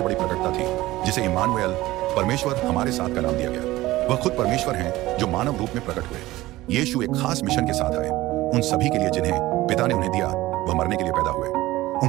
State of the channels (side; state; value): left; quieter; 17.5 dB